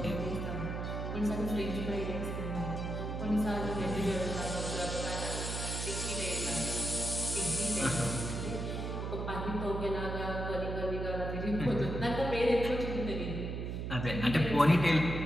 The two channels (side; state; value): right; noise; hum, 4 dB below the sound